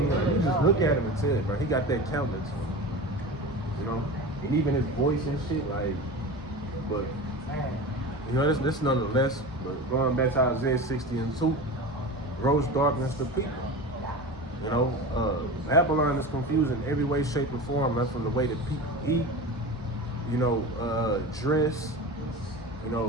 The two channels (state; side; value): normal; both; correlation 0.30